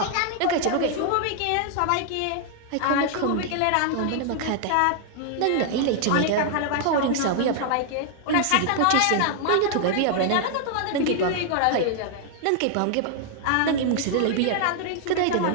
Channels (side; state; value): both; different; correlation 0.00